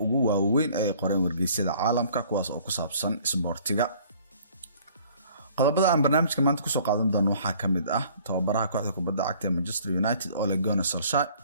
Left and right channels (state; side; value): inverted; both; correlation -0.55